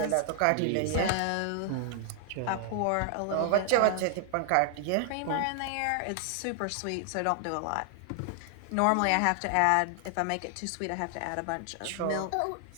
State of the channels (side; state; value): both; different; correlation 0.00